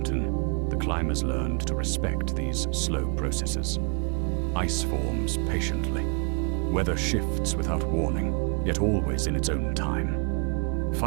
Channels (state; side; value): quieter; left; 39.0 dB